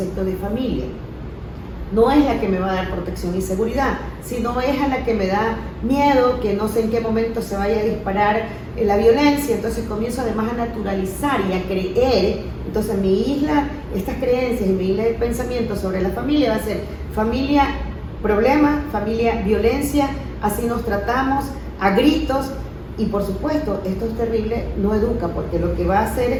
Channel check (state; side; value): identical; both; correlation 1.00